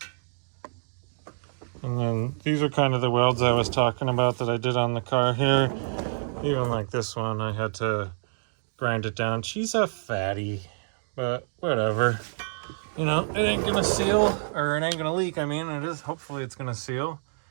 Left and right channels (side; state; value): left; silent; digital silence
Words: And then these are kind of the welds I was talking about that I did on the car here. Even like this one, I had to grind it down. She's a fatty, but whatever. You know, it ain't gonna seal, or it ain't gonna leak. I mean, it is. Hopefully it's gonna seal.